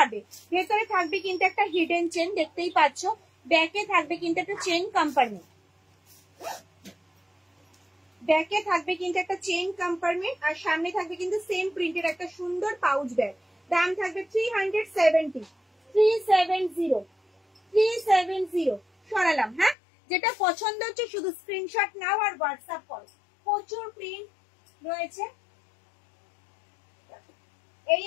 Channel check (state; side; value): drops out; right; at 19.8 s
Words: ভেতরে থাকবে কিন্তু একটা হিডেন চেন, দেখতেই পাচ্ছ। ব্যাকে থাকবে কিন্তু একটা চেন কম্পার্টমেন্ট, ব্যাকে থাকবে কিন্তু একটা চেন কম্পার্টমেন্ট, আর সামনে থাকবে কিন্তু সেম প্রিন্টের একটা সুন্দর পাউচ ব্যাগ। দাম থাকবে 370, 370 সরালাম। হ্যাঁ, যেটা পছন্দ হচ্ছে শুধু স্ক্রিনশট নাও আর হোয়াটসঅ্যাপ করো। প্রচুর প্রিন্ট রয়েছে। এই